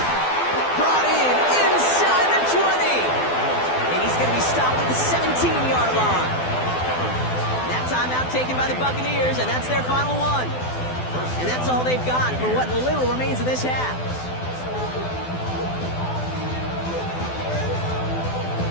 Brought in inside the 20. And he's going to be stopped at the 17-yard line. That timeout taken by the Buccaneers, and that's their final one. And that's all they've got for what little remains of this half.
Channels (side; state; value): right; late; 12 ms